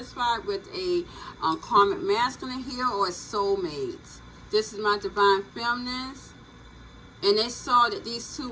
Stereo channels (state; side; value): identical; both; correlation 1.00